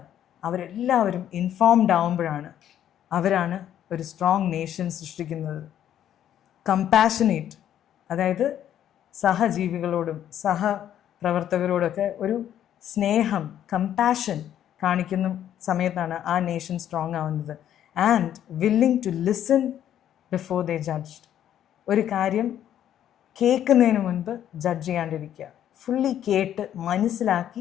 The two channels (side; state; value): right; quieter; 10.7 dB